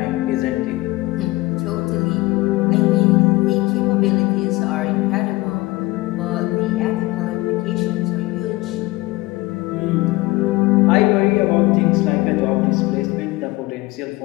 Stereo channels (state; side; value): quieter; right; 20.6 dB